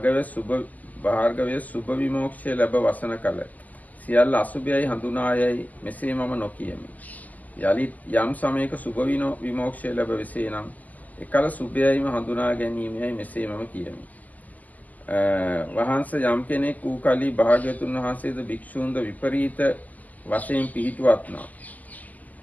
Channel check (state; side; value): late; right; 0.079 ms